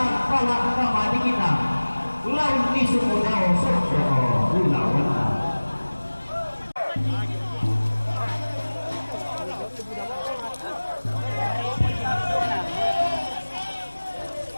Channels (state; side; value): inverted; both; correlation -1.00